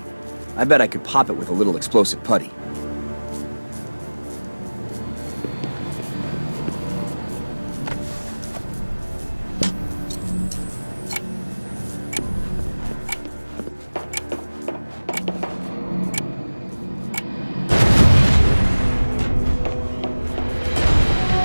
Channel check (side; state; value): both; inverted; correlation -1.00